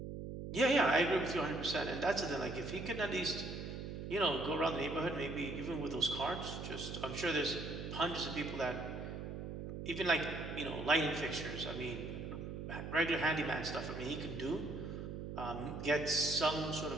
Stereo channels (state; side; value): noise; right; hum, 7 dB below the sound